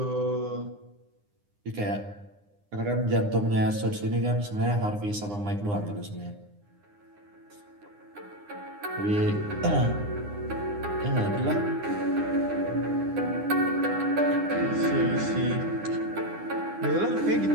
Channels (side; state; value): left; late; 9.8 ms